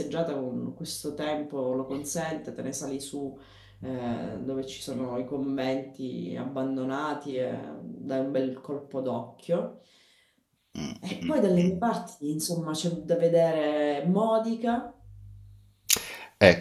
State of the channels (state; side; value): identical; both; correlation 1.00